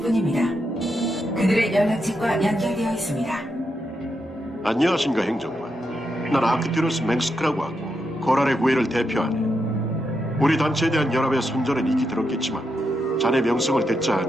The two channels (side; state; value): both; normal; correlation 0.83